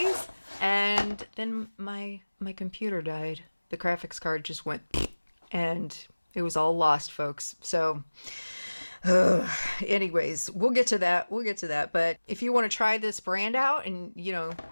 And then my computer died. The graphics card just went and it was all lost, folks. So anyways, we'll get to that. But if you want to try this brand out and, you know,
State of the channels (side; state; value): both; inverted; correlation -1.00